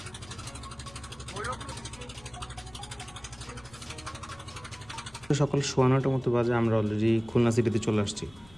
সকাল 9:15 মতো বাজে, আমরা অলরেডি খুলনা সিটিতে চলে আসছি।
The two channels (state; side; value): noise; left; rumble, 24 dB below the sound